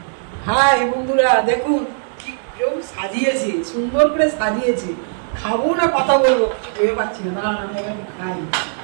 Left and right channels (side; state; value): left; silent; digital silence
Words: হ্যাঁ বন্ধুরা দেখুন কি কেউ সাজিয়েছি, সুন্দর করে সাজিয়েছি। খাবো না কথা বলবো ভেবে পাচ্ছি না, না আমি একটু খাই।